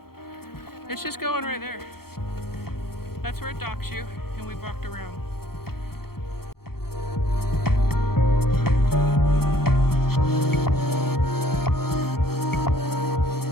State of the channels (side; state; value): right; late; 0.94 ms